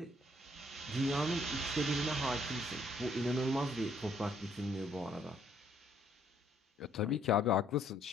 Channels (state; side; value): normal; both; correlation 0.66